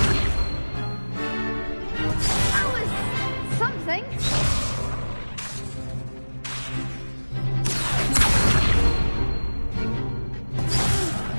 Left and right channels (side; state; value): both; inverted; correlation -1.00